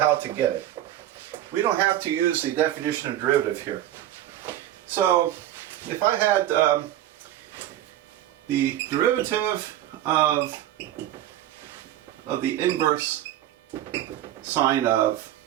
to get it. We don't have to use the definition of derivative here. So if I had the derivative of the inverse sine of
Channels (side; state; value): left; quieter; 12.9 dB